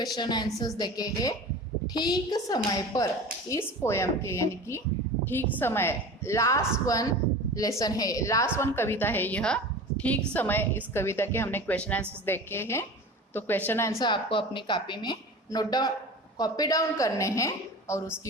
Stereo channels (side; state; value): both; normal; correlation 0.35